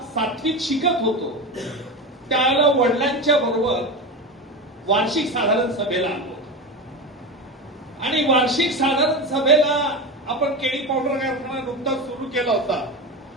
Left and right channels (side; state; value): both; normal; correlation 0.22